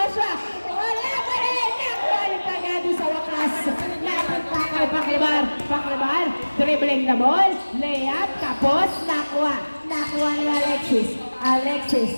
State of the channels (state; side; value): inverted; both; correlation -1.00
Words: wala pa rin, nakuha ni Pagado sa wakas. Napunta kay Paklibar. Paklibar, dribbling the ball, layup, tapos nakuha. Nakuha ni Alexis.